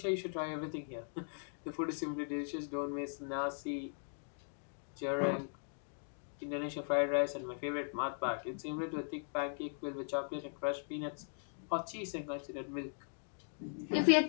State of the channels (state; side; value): silent; right; digital silence